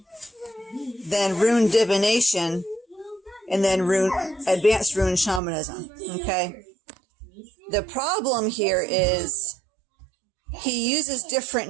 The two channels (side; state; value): left; drops out; at 5.4 s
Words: then rune divination, and then advanced rune shamanism, okay? The problem here is he uses different